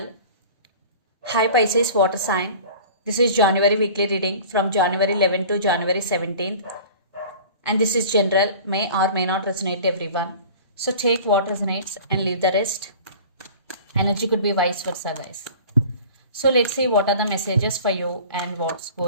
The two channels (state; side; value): inverted; both; correlation -0.42